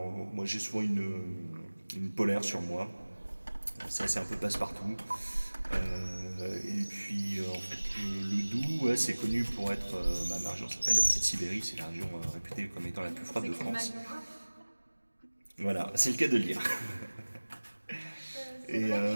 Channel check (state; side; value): inverted; both; correlation -1.00